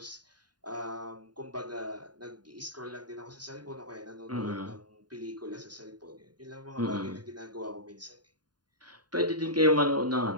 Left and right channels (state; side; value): late; left; 0.70 ms